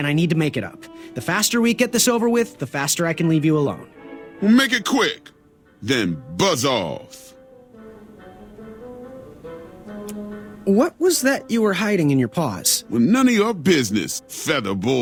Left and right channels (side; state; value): both; identical; correlation 1.00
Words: I need to make it up. The faster we get this over with, the faster I can leave you alone. Well, make it quick. Then buzz off. What was that you were hiding in your paws? Well, none of your business, feather